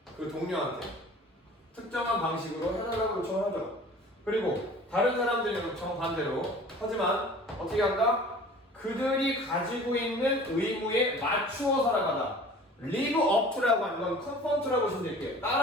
그 동료한테 특정한 방식으로 해달라고 요청을 하죠. 그리고 다른 사람들의 요청 반대로 하지만 어떻게 한다? 그들이 가지고 있는 의무에 맞추어 살아가다. live up to라고 하는 건 conform to라고 보시면 될게요.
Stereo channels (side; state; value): both; normal; correlation 0.45